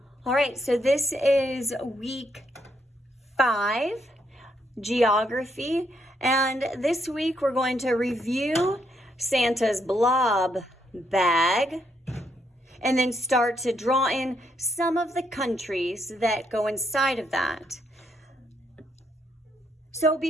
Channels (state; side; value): normal; both; correlation 0.76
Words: All right, so this is week 5, geography. And this week we're going to review Santa's blob bag and then start to draw in some of the countries that go inside of that. So